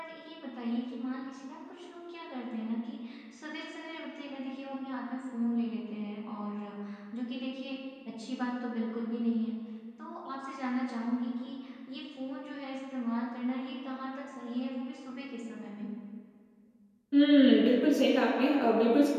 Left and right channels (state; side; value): identical; both; correlation 1.00